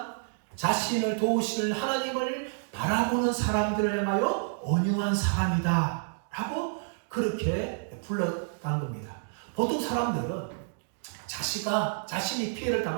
자신을 도우시는 하나님을 바라보는 사람들을 향하여 온유한 사람이다 라고 그렇게 불렀다는 겁니다. 보통 사람들은 자신이 피해를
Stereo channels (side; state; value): left; silent; digital silence